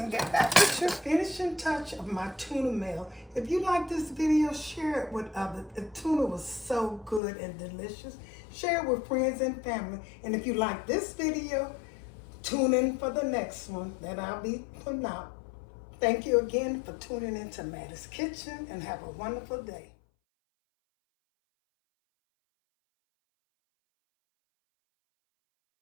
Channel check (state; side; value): drops out; right; at 7.2 s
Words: get back with your finishing touch of my tuna melt. If you like this video, share it with others. The tuna was so good and delicious. Share it with friends and family. And if you like this video, tune in for the next one that I'll be putting out. Thank you again for tuning into Mattie's Kitchen, and have a wonderful day.